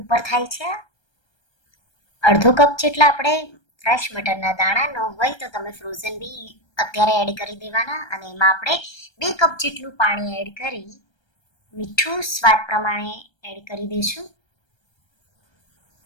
ઉપર થાય છે. અડધો કપ જેટલા આપણે ફ્રેશ મટરના દાણા ન હોય તો તમે ફ્રોઝન બી અત્યારે એડ કરી દેવાના. અને એમાં આપણે 2 કપ જેટલું પાણી એડ કરી મીઠું સ્વાદ પ્રમાણે એડ કરી દઈશું.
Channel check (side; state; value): right; late; 1.3 ms